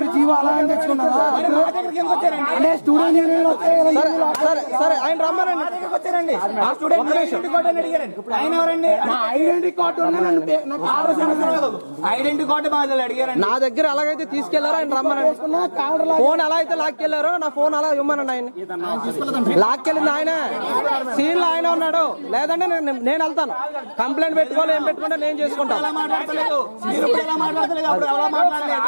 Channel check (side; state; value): both; inverted; correlation -1.00